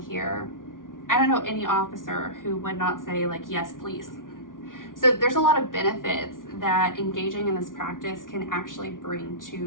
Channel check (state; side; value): late; right; 0.89 ms